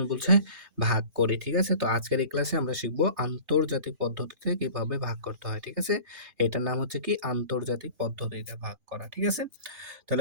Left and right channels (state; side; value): late; left; 2.5 ms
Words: বলছে ভাগ করি। ঠিক আছে? তো আজকের এই ক্লাসে আমরা শিখব আন্তর্জাতিক পদ্ধতিতে কিভাবে ভাগ করতে হয়। ঠিক আছে? এটার নাম হচ্ছে কি আন্তর্জাতিক পদ্ধতিতে ভাগ করা। ঠিক আছে?